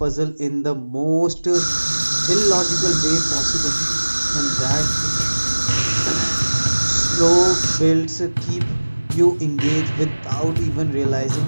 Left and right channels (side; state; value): both; inverted; correlation -1.00